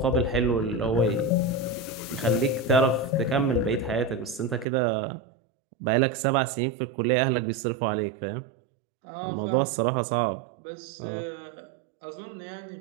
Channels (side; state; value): left; drops out; at 4.7 s